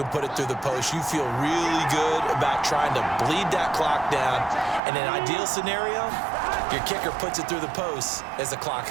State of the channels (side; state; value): left; drops out; at 4.8 s